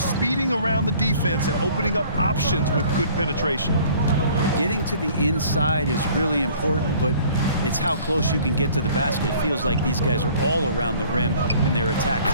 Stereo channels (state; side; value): inverted; both; correlation -0.53